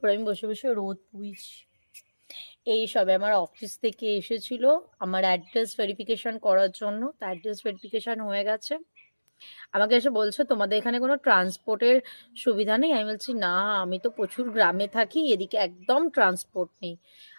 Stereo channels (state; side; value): inverted; both; correlation -1.00